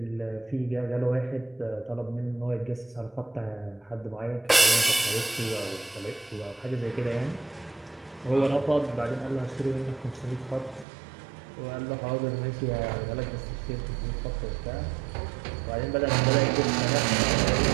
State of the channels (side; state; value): left; drops out; at 10.9 s